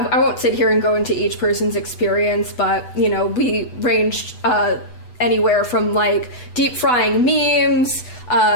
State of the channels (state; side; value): late; right; 8.1 ms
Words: sit here and go into each person's experience, but we ranged anywhere from deep frying memes